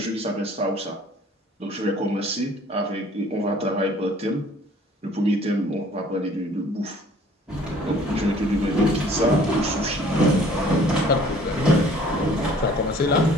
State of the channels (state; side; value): normal; both; correlation 0.54